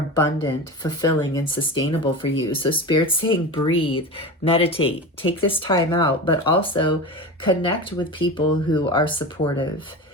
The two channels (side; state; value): both; normal; correlation 0.27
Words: fulfilling, and sustainable for you. So Spirit's saying breathe, meditate, take this time out, but also connect with people who are supportive,